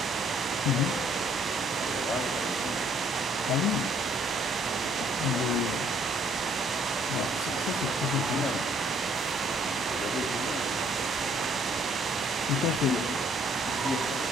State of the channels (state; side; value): normal; both; correlation 0.63